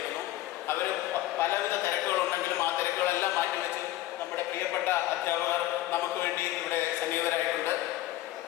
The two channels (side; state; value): right; quieter; 15.3 dB